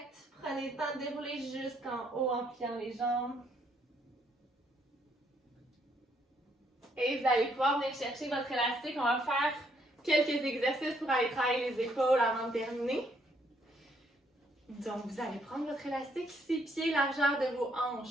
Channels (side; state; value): both; normal; correlation 0.71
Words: Prenez le temps de dérouler jusqu'en haut en pliant les jambes. Et vous allez pouvoir venir chercher votre élastique. On va faire quelques exercices pour aller travailler les épaules avant de terminer. Donc, vous allez prendre votre élastique, 6 pieds, largeur de vos